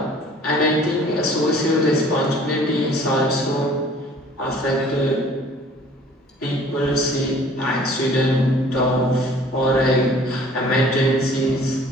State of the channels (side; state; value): both; normal; correlation 0.52